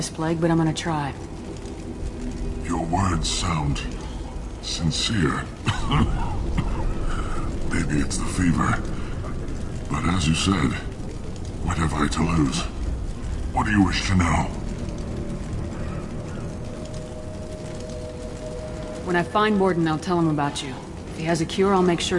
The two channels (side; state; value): both; identical; correlation 1.00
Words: plague, but I'm gonna try. Your words sound sincere. Maybe it's the fever. But as you said, what have I to lose? What do you wish to know? When I find Mordin, I'll tell him about you. If he has a cure, I'll make